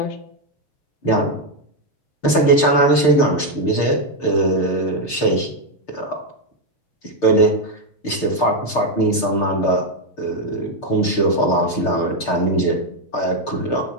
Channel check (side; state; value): right; late; 6.6 ms